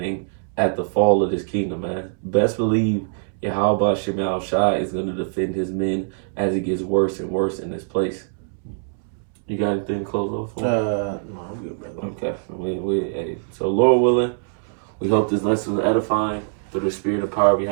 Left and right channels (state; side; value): silent; left; 64 dB below the other